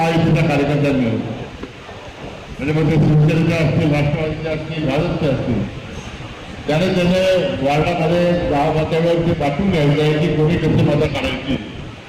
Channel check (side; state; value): both; identical; correlation 1.00